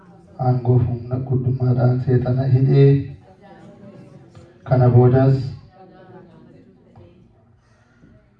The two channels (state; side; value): identical; both; correlation 1.00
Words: aangoo humna guddummaadhaan seexana hidhee kana boodas